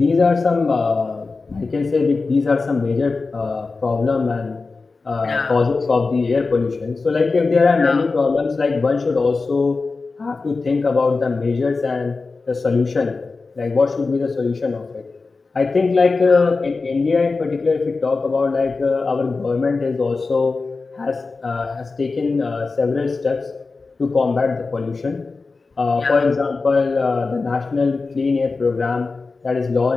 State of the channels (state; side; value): quieter; right; 4.0 dB